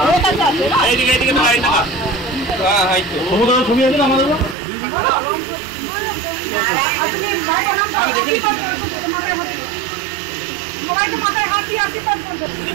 এইদিকে এইদিকে তো আইনা হ্যাঁ হাই তো সমুদ্র ছবি আছে আমাদের আমি দেখি সবাইকে মাথায় হাত দিয়ে আশীর্বাদ করবে।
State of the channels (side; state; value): left; drops out; at 4.5 s